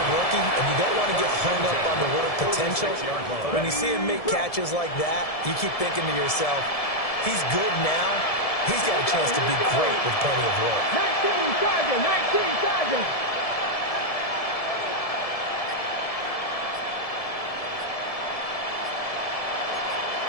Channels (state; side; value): late; right; 1.7 ms